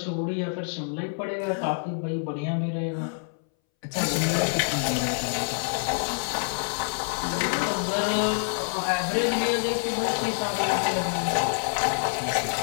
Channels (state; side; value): silent; right; 60 dB below the other